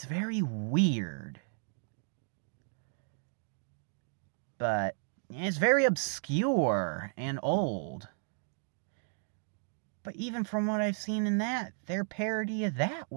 very weird. But it's very obscure and old. But even from what I've seen in that, their parody of that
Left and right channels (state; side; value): silent; left; digital silence